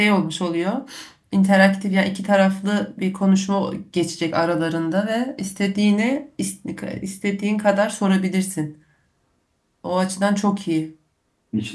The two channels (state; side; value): identical; both; correlation 1.00